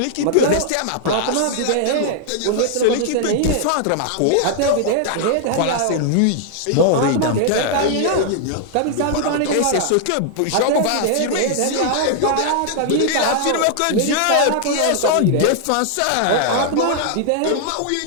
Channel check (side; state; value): both; different; correlation 0.00